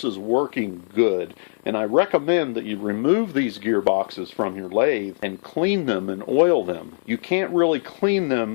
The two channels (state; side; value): silent; right; 60 dB below the other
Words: is working good, and I recommend that you remove these gearboxes from your lathe and clean them and oil them. You can't really clean